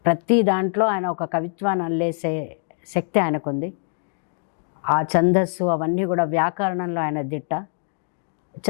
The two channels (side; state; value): right; silent; digital silence